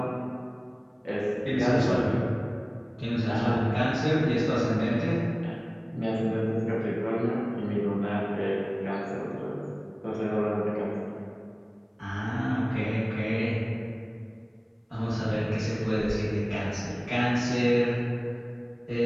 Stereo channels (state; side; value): identical; both; correlation 1.00